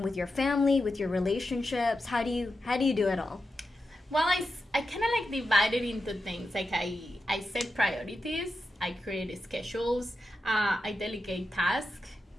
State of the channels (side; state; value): both; normal; correlation 0.89